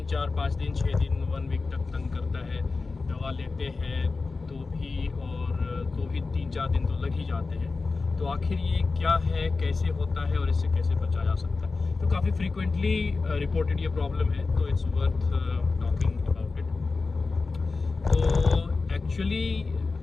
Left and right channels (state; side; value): quieter; right; 4.0 dB